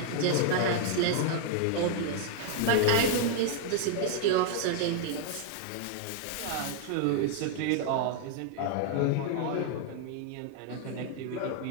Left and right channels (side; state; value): both; different; correlation 0.00